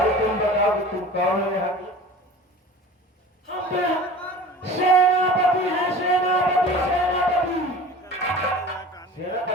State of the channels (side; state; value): both; normal; correlation 0.40